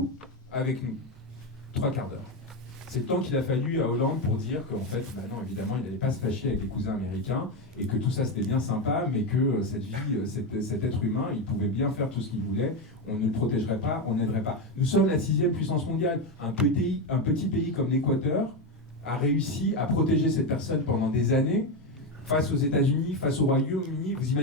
avec nous. 3 quarts d'heure. C'est le temps qu'il a fallu à Hollande pour dire qu'en fait, non, évidemment, il n'allait pas se fâcher avec les cousins américains et que tout ça c'était bien sympa, mais que cet être humain, il pouvait bien faire tout ce qu'il voulait, on ne le protégerait pas, on n'aiderait pas. Nous sommes la 6e puissance mondiale. Un petit pays comme l'Équateur a réussi à protéger cette personne pendant des années face aux États-Unis, face au Royaume-Uni. Vous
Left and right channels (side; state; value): both; normal; correlation 0.11